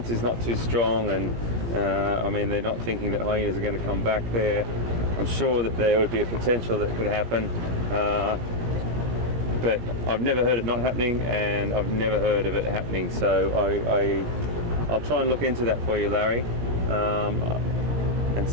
is not too strong, and I mean, they're not thinking that hyenas are going to come back there. I'm sure that there would be a potential that could happen. But I've never heard it not happening, and I've never heard of it happening, so I'll try and look into that for you, Larry, and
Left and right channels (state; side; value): late; left; 17 ms